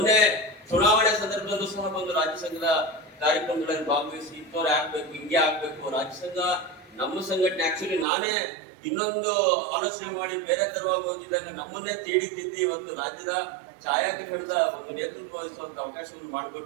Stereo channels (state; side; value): drops out; left; at 8.1 s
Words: ಚುನಾವಣೆ ಸಂದರ್ಭದಲ್ಲೂ ಸಹ ಬಂದು ರಾಜ್ಯ ಸಂಘದ ಕಾರ್ಯಕ್ರಮಗಳಲ್ಲಿ ಭಾಗವಹಿಸಿ ಇಂಥವ್ರು ಆಗ್ಬೇಕು, ಹಿಂಗೆ ಆಗ್ಬೇಕು, ರಾಜ್ಯ ಸಂಘ ನಮ್ಮ ಸಂಘಟನೆ. ಆಕ್ಚುಲಿ ನಾನೇ ಇನ್ನೊಂದು ಆಲೋಚನೆ ಮಾಡಿ ಬೇರೆ ತರವಾಗಿ ಹೋಗಿದ್ದಾಗ ನಮ್ಮನ್ನೇ ತೀಡಿತಿದ್ದು ಇವತ್ತು ರಾಜ್ಯದ ಛಾಯಾಗ್ರಹಣದ ಒಂದು ನೇತೃತ್ವ ವಹಿಸುವಂತ ಅವಕಾಶವನ್ನು